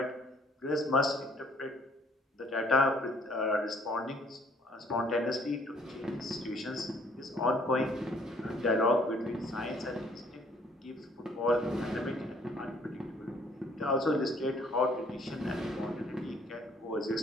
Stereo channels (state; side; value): normal; both; correlation 0.61